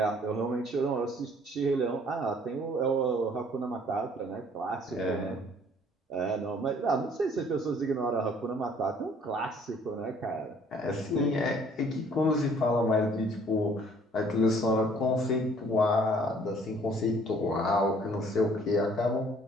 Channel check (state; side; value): normal; both; correlation 0.58